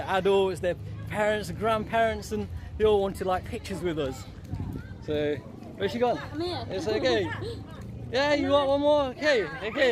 adults, their parents, and grandparents, and they all wanted like pictures with us. So, where's she gone? I'm here. It's okay. Yeah, you want one more?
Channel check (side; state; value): both; identical; correlation 1.00